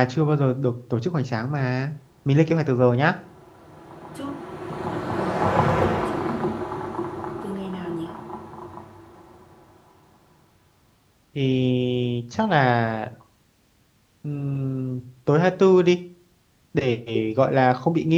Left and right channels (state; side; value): identical; both; correlation 1.00